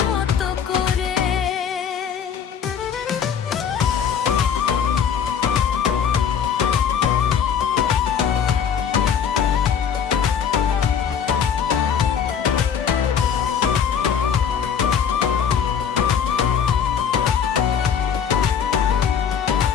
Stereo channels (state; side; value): quieter; right; 7.7 dB